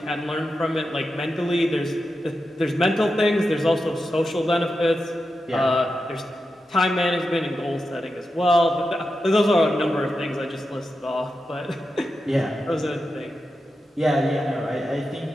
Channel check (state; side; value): normal; both; correlation 0.89